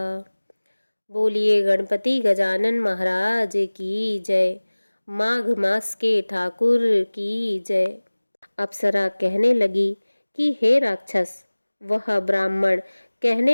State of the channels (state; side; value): inverted; both; correlation -1.00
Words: बोलिए गणपति गजानन महाराज की जय। माघ मास के ठाकुर की जय। अप्सरा कहने लगी कि हे राक्षस। वह ब्राह्मण